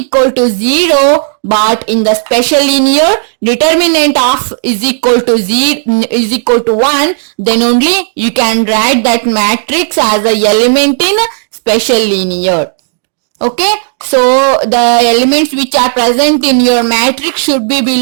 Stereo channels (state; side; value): silent; left; digital silence